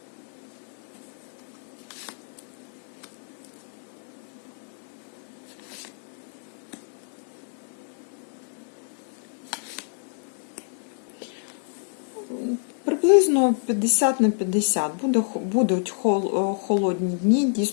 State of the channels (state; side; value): silent; right; 60 dB below the other